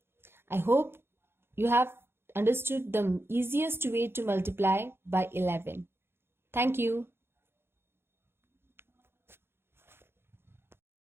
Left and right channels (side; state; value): left; late; 0.11 ms